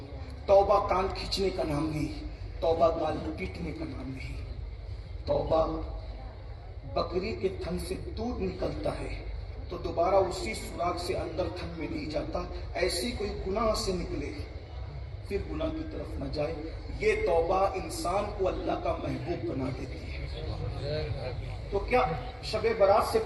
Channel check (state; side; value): identical; both; correlation 1.00